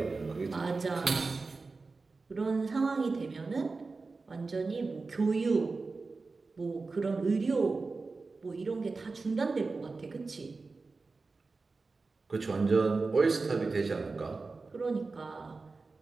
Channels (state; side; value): quieter; left; 4.0 dB